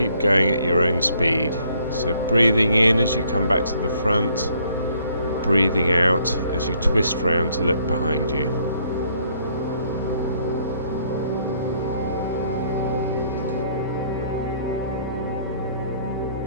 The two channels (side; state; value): both; inverted; correlation -0.65